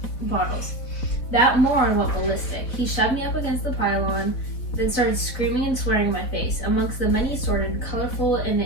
That moron went ballistic. He shoved me up against the pylon, then started screaming and swearing in my face. Amongst the many assorted, colorful,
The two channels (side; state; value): right; late; 4.3 ms